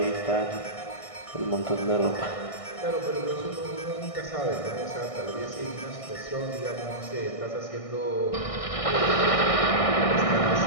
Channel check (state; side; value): late; right; 1.6 ms